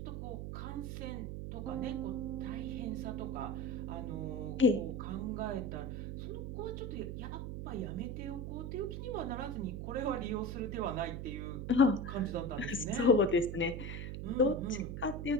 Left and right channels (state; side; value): noise; right; hum, 5 dB below the sound